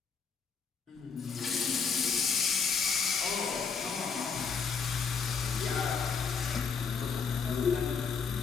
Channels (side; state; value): right; quieter; 5.7 dB